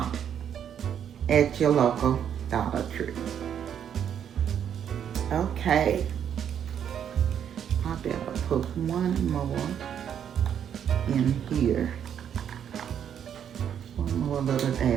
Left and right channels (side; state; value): left; quieter; 8.9 dB